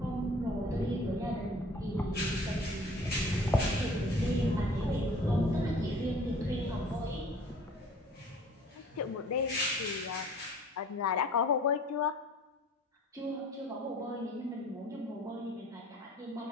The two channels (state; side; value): normal; both; correlation 0.50